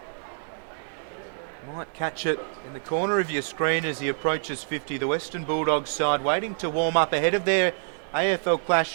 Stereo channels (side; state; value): left; silent; digital silence